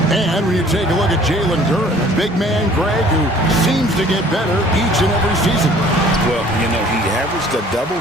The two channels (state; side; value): normal; both; correlation 0.53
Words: And when you take a look at Jalen Duren, a big man, Greg, who seems to get better each and every season. Well, you know, he averaged a